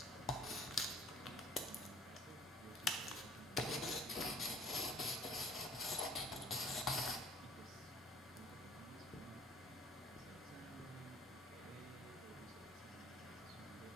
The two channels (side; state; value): both; normal; correlation 0.55